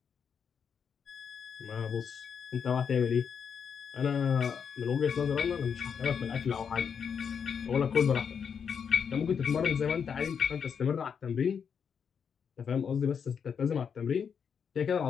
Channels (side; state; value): right; quieter; 6.9 dB